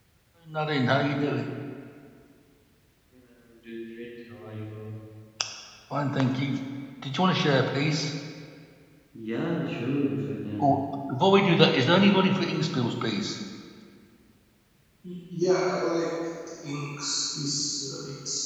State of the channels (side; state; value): both; identical; correlation 1.00